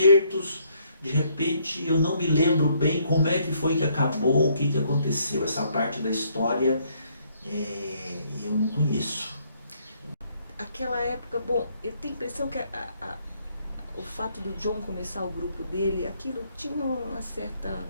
De repente, eu não me lembro bem como é que foi que acabou, o que aconteceu. Essa parte da história eu não conheço. Aquela época, bom, eu tenho a impressão que o fato do John começar o grupo dele, aquilo tinha uma certa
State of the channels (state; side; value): inverted; both; correlation -0.69